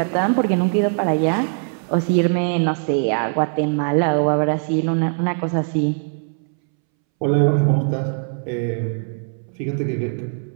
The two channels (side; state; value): left; silent; 65 dB below the other